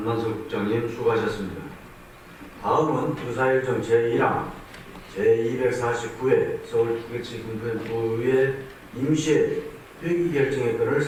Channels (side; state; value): both; identical; correlation 1.00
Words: 국장님 수고하셨습니다. 다음은 의사일정 제1항 제249회 서울특별시 금천구의 임시회 회기 결정의 건을